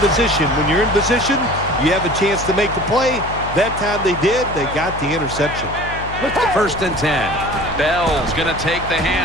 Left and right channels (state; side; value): noise; left; hum, 11 dB below the sound